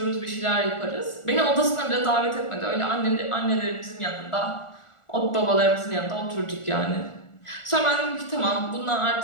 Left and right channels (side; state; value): right; late; 1.4 ms